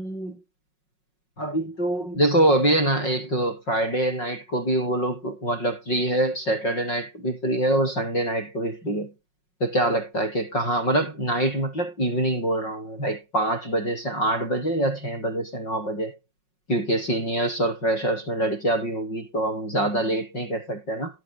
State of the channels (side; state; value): right; late; 5.5 ms